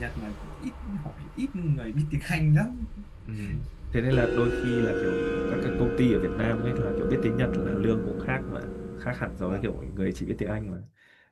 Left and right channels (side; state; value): both; identical; correlation 1.00